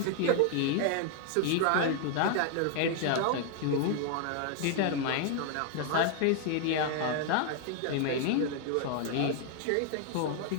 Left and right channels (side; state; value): both; different; correlation 0.00